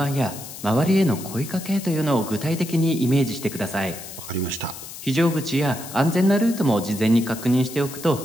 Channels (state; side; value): noise; left; hiss, 13 dB below the sound